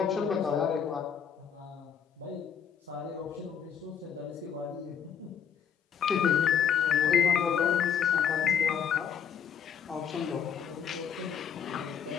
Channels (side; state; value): right; quieter; 7.8 dB